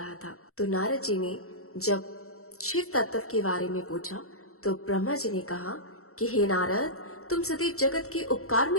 था। तो नारद जी ने जब शिव तत्व के बारे में पूछा तो ब्रह्मा जी ने कहा कि हे नारद, तुम सदैव जगत के उपकार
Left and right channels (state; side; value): late; right; 0.63 ms